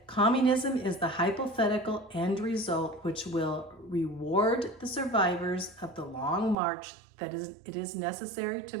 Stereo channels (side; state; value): left; drops out; at 6.6 s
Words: communism is the hypothetical end result which will reward the survivors of the long march that it is necessary to